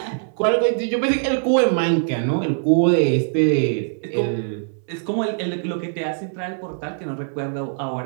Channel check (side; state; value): left; silent; 63 dB below the other